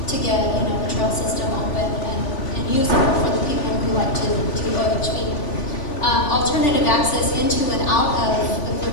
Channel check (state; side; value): late; right; 3.5 ms